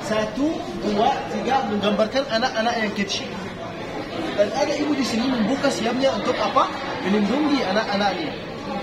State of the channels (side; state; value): both; identical; correlation 1.00